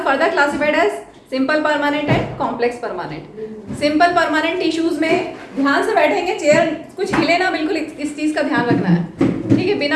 further classified as simple permanent and complex permanent. Simple permanent tissues में ध्यान से बैठेंगे, चेयर कुछ हिले ना, बिल्कुल इस चीज का ध्यान रखना है, ठीक है,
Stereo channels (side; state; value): both; identical; correlation 1.00